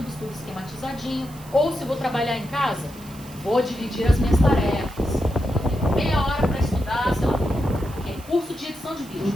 tudo esquematizadinho. Ou se vou trabalhar em casa, vou dividir as minhas tarefas. Meia hora para estudar, sei lá, curso de edição de vídeo.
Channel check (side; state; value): right; noise; hiss, 21 dB below the sound